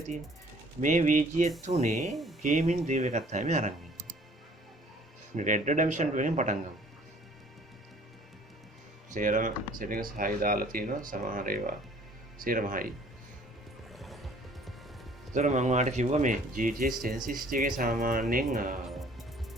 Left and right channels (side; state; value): both; normal; correlation 0.55